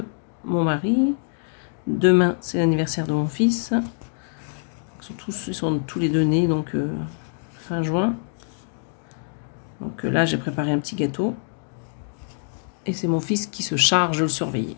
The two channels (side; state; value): right; silent; digital silence